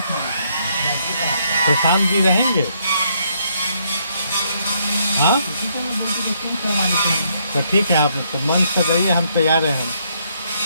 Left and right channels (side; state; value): both; inverted; correlation -0.72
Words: प्रशांत जी रहेंगे? हाँ, तो ठीक है, आप तो मंच पर रहिए, हम तैयार हैं।